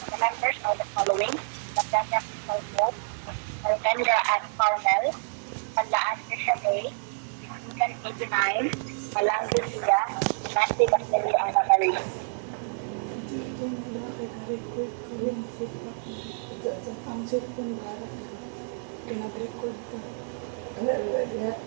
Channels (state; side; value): silent; left; 59 dB below the other